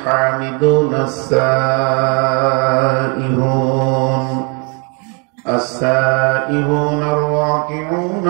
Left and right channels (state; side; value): quieter; left; 34.5 dB